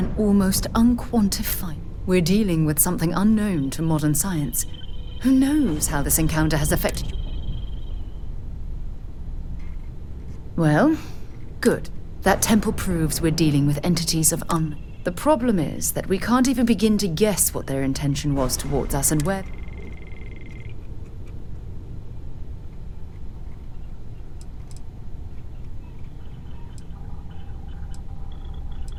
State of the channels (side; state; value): both; identical; correlation 1.00